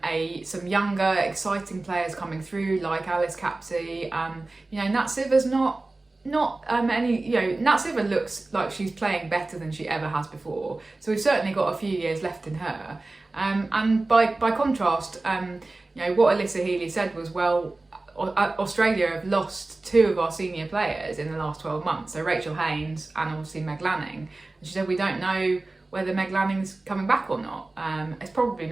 some younger, exciting players coming through like Alice Capsey. Nat Sitter's not not any, Natseva looks like she's playing better than she ever has before. So we've certainly got a few years left in her. And by contrast, what Alyssa Healy said was, well, Australia have lost 2 of our senior players in the last 12 months. So Rachel Haynes and obviously Meg Lanning. And she said, we don't know whether Meg Lanning's coming back or not. It's probably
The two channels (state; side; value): quieter; left; 3.1 dB